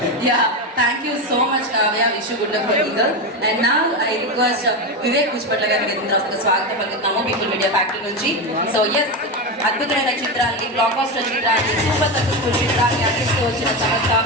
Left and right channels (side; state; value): both; normal; correlation 0.15